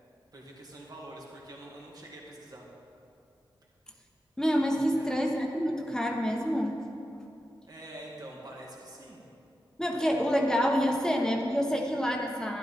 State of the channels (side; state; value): both; normal; correlation 0.90